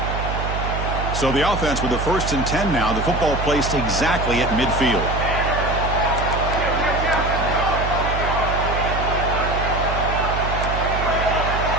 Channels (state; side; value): noise; right; hum, 3 dB below the sound